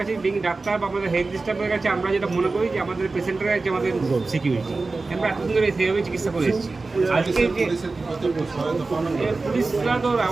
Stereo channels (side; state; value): left; quieter; 3.7 dB